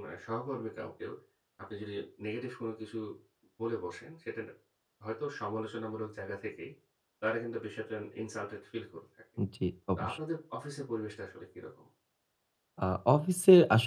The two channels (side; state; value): both; identical; correlation 1.00